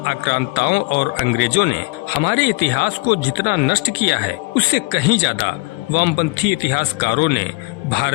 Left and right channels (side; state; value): right; quieter; 27.2 dB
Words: आक्रांताओं और अंग्रेजों ने हमारे इतिहास को जितना नष्ट किया है, उससे कहीं ज्यादा वामपंथी इतिहासकारों ने